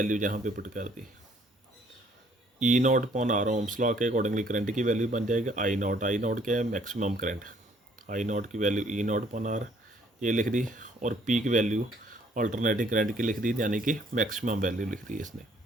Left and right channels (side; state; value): both; normal; correlation 0.62